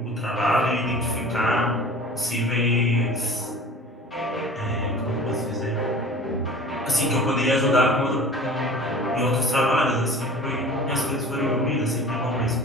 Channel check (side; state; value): both; normal; correlation 0.42